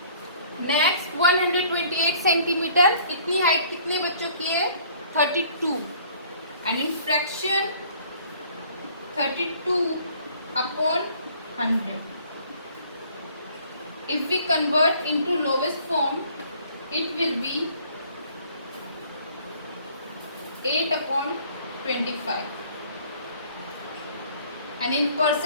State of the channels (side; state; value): both; inverted; correlation -0.56